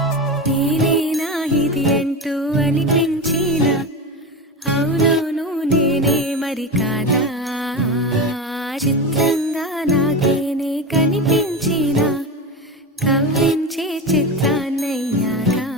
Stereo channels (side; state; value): both; normal; correlation 0.22